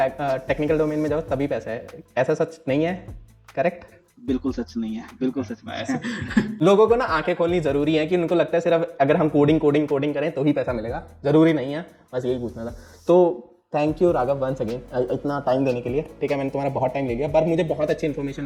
टेक्निकल डोमेन में जाओ तभी पैसा है, ऐसा सच नहीं है, करेक्ट? बिल्कुल सच नहीं है, बिल्कुल सच नहीं है. लोगों को ना आंखें खोलनी जरूरी है, कि उनको लगता है सिर्फ अगर हम कोडिंग करें तो ही पैसा मिलेगा, जरूरी नहीं है. बस यही पूछना था. तो thank you Raghav once again इतना टाइम देने के लिए, ठीक है. मैंने तुम्हारा बहुत टाइम ले लिया, पर मुझे बहुत अच्छी इन्फॉर्मेशन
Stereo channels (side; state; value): both; identical; correlation 1.00